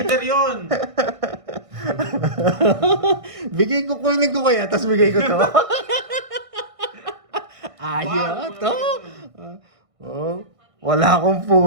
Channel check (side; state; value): left; late; 1.6 ms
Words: yun! Bigay ko, kunin ko kaya, tapos bigay ko to. Ayaw to. Oh, wala akong